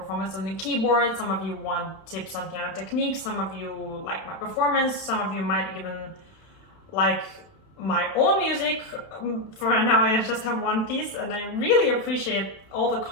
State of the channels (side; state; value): right; late; 31 ms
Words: on the keyboard, some of you want tips on piano technique, some of you like my performance, some of you might even like my own music. For now I just have one piece, and I really appreciate all the